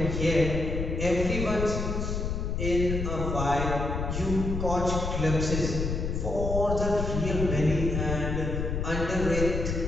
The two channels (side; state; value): left; noise; rumble, 2 dB below the sound